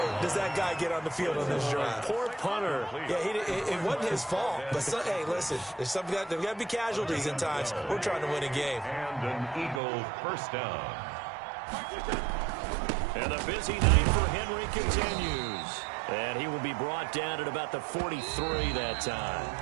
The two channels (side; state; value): left; drops out; at 9.8 s